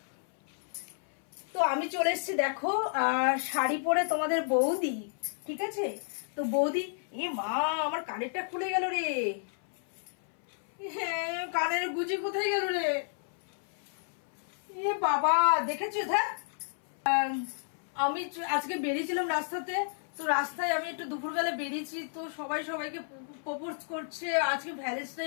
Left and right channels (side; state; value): right; silent; 57 dB below the other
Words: তো আমি চলে এসেছি দেখো শাড়ি পরে তোমাদের বৌদি, ঠিক আছে? তো বৌদি, এ মা আমার কানেরটা খুলে গেল রে। হ্যাঁ, কানের গুজি কোথায় গেল রে? এ বাবা, দেখেছো? আমি আজকে বেরিয়েছিলাম রাস্তাতে, তো রাস্তায় আমি একটু দুপুরবেলা বেরিয়েছি, তো সবাই সবাইকে প্রপোজ করছে, আজকে